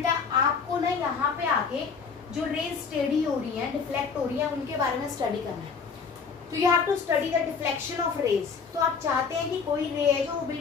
आपको ना यहाँ पे आके जो रेज स्टेडी हो रही है, डिफ्लेक्ट हो रही है, उनके बारे में स्टडी करना है। तो you have to study the deflection of rays. तो आप चाहते हैं कि कोई रे है जो वो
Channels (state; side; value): quieter; right; 5.6 dB